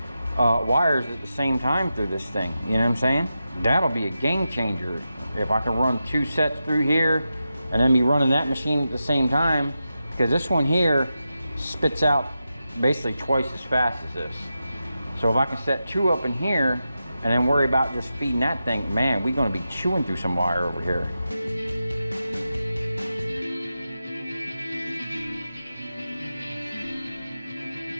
wires at the same time through this thing, you know what I'm saying? That'll be a game changer. If I can run 2 sets through here and then be running that machine at the same time, because this one here spits out basically twice as fast as this. So if I can set 2 up in here and then worry about just feeding that thing, man, we're gonna be chewing through some wire over here.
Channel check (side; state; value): both; inverted; correlation -0.90